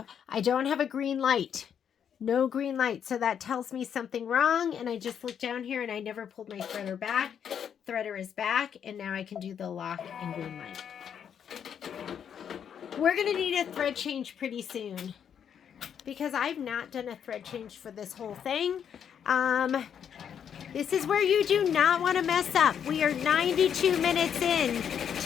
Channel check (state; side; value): quieter; right; 8.3 dB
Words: I don't have a green light. No green light. So that tells me something wrong. And I just looked down here and I never pulled my threader back. Threader is back. And now I can do the lock and green light. We're going to need a thread change pretty soon, because I've not done a thread change for this whole thing. This is where you do not want to mess up. We are 92 minutes in